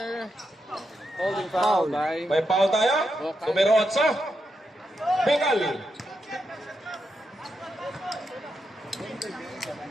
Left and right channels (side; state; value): both; normal; correlation 0.84